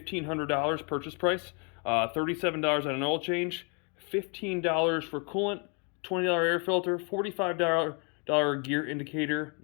purchase price, $37 on an oil change, $15 for coolant, $20 air filter, $45 gear indicator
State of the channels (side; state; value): right; quieter; 36.2 dB